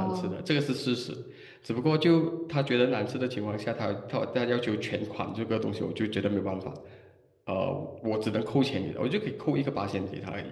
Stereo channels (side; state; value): both; identical; correlation 1.00